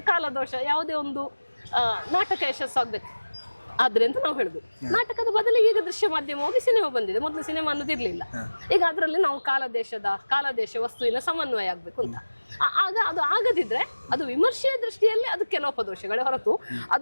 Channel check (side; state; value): both; inverted; correlation -1.00